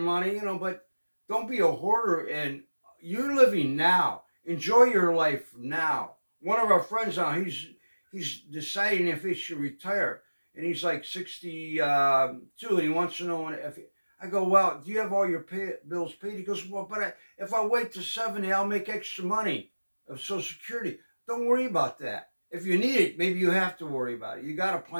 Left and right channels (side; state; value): both; inverted; correlation -1.00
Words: but don't be a hoarder. And you're living now. Enjoy your life now. One of our friends now, he's deciding if he should retire, and he's like 62, and he wants to know if. I go, well, do you have all your bills paid? He goes, well, but if I wait to 70, I'll make extra money of Social Security. Don't worry about that. If you need it, maybe you have to worry about it. You got to